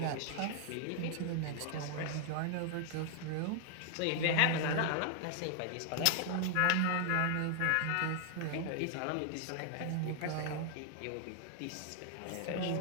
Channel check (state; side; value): different; both; correlation 0.00